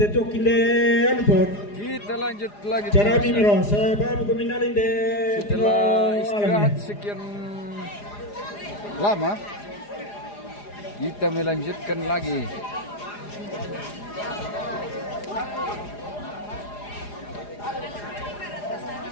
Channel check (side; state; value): right; late; 4.9 ms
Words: kilen pot. Kita lanjut lagi. Cara mimiro, saya baru keminalin deh. Setelah istirahat sekian lama, kita melanjutkan lagi.